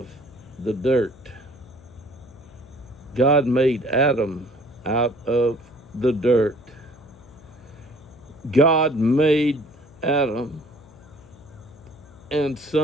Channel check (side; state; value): left; noise; hum, 24 dB below the sound